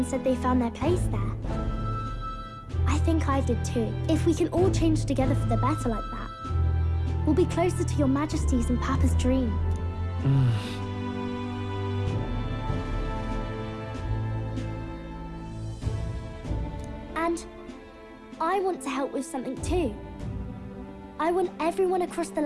said they found their place there. I think I did too. If we can all change together for the better like that, we'll be closer to your Majesty's and Papa's dream. And I want to help with something too. I want everyone across the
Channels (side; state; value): both; identical; correlation 1.00